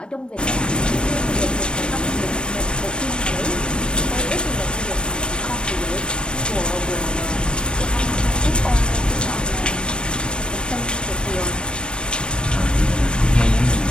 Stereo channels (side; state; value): right; late; 0.055 ms